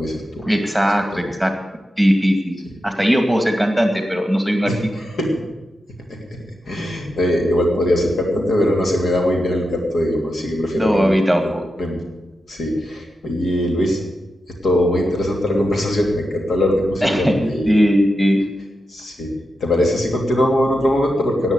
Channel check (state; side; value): normal; both; correlation 0.89